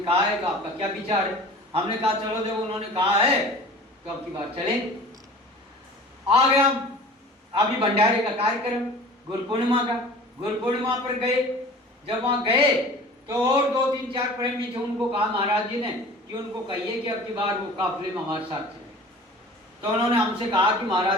कहा है तो आपका क्या विचार है? हमने कहा चलो जब उन्होंने कहा है तो अब की बार चलें। आ गया अभी भंडारे का कार्यक्रम, गुरु पूर्णिमा का, गुरु पूर्णिमा पर गए। जब वहां गए तो और 2-3-4 प्रेमी थे, उनको कहा महाराज जी ने कि उनको कहिए कि अब की बार वो काफिले में हमारे साथ चले। तो उन्होंने हमसे कहा कि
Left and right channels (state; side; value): normal; both; correlation 0.42